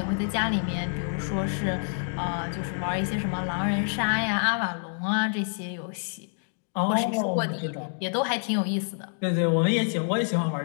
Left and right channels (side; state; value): right; silent; digital silence